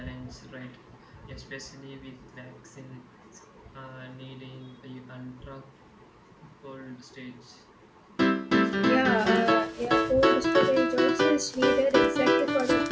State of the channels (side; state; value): both; identical; correlation 1.00